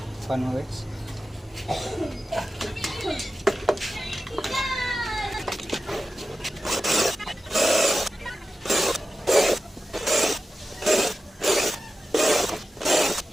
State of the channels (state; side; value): normal; both; correlation 0.93